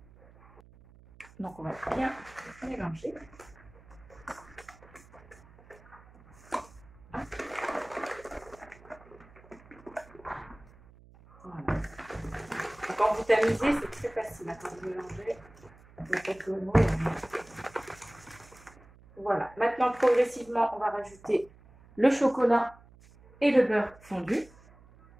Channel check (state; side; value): noise; right; hum, 24 dB below the sound